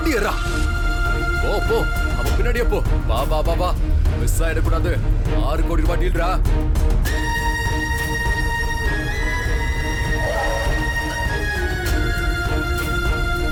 ஏறா. போ போ, அவன் பின்னாடியே போ. வா வா வா வா, மிஸ் ஆயிடக்கூடாது. 6 கோடி ரூபாய் டீல்ரா.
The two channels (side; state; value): both; identical; correlation 1.00